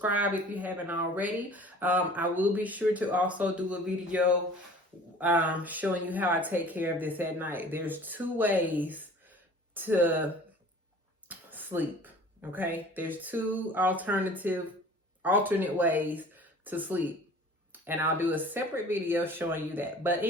if you haven't already. I will be sure to also do a video showing you how I take care of this at night. There's 2 ways to sleep, okay? There's 2 alternate ways to sleep, and I'll do a separate video showing you that. But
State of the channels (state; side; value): normal; both; correlation 0.46